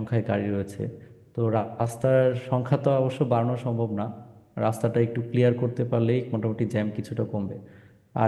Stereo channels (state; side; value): identical; both; correlation 1.00